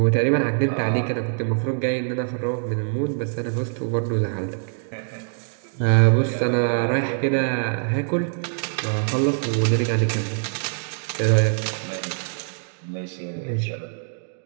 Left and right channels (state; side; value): silent; left; digital silence